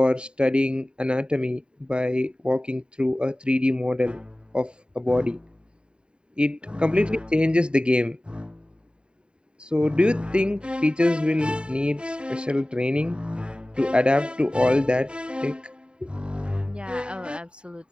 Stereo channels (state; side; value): late; left; 0.050 ms